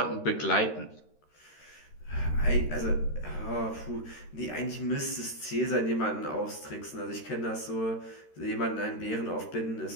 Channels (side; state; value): right; late; 13 ms